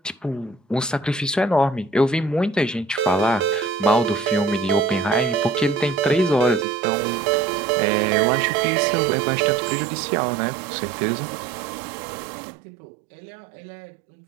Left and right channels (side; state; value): left; drops out; at 6.7 s